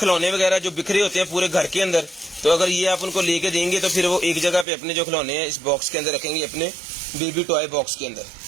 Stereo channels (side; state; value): left; drops out; at 4.7 s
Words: वगैरह जो बिखरे होते हैं पूरे घर के अंदर, तो अगर ये आप उनको लेके देंगे तो फिर वो एक जगह पे अपने जो खिलौने हैं इस बॉक्स के अंदर रखेंगे, अपने बेबी टॉय बॉक्स के अंदर।